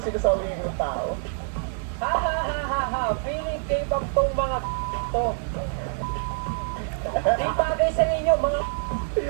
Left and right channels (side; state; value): left; silent; digital silence